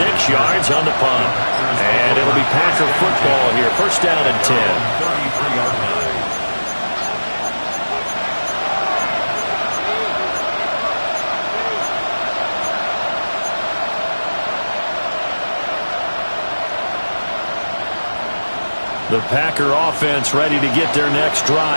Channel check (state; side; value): inverted; both; correlation -1.00